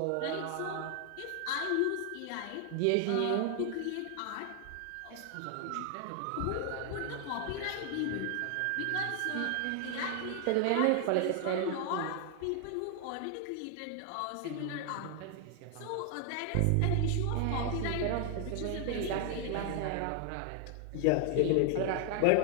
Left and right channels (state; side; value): different; both; correlation 0.00